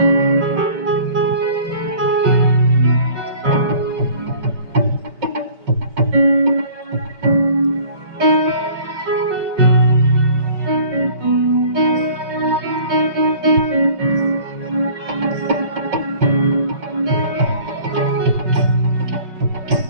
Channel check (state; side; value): late; left; 5.3 ms